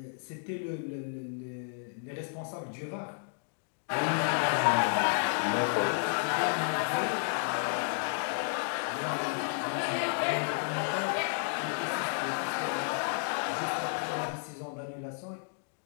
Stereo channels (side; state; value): right; silent; digital silence